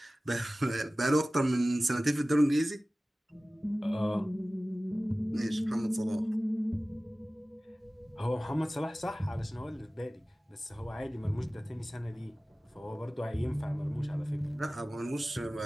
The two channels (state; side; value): normal; both; correlation 0.97